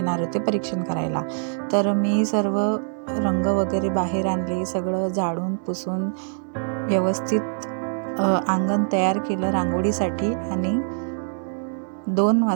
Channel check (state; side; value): silent; left; 63 dB below the other